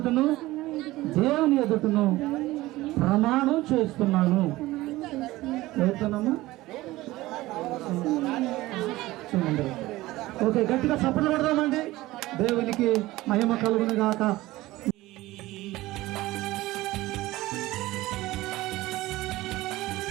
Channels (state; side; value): quieter; left; 18.1 dB